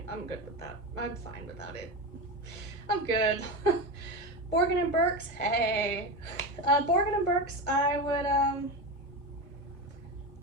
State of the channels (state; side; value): late; right; 1.2 ms